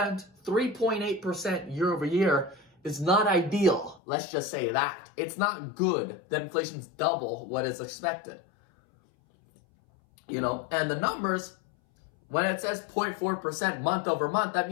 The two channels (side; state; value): right; drops out; at 4.0 s